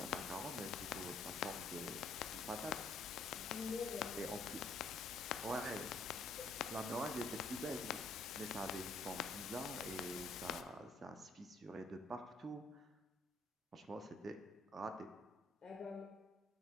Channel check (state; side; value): quieter; right; 3.1 dB